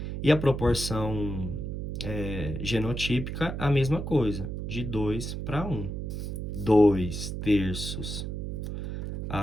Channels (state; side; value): noise; right; hum, 4 dB below the sound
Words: E a proporção genotípica, a mesma coisa, de 2/1. 2/3